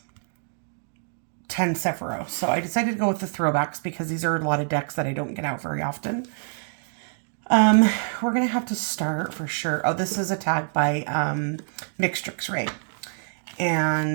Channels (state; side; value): silent; left; digital silence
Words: Sephiroth. So I decided to go with the throwbacks because these are a lot of decks that I don't get out very often. We're going to have to start for sure. Oh, this is a tag by Mixtress Rae.